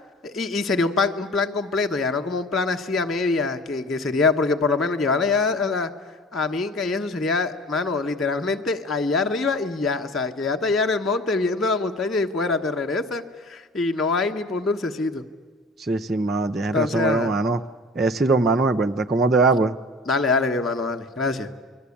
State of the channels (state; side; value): normal; both; correlation 0.42